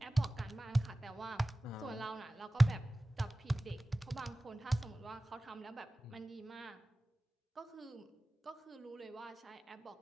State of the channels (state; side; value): normal; both; correlation 0.97